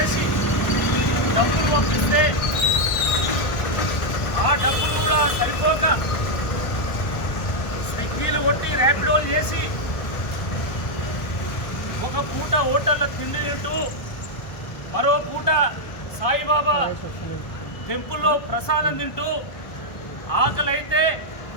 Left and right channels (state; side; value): late; right; 1.1 ms